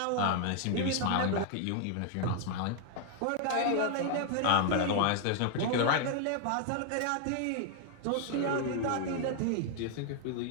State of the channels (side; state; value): both; different; correlation 0.00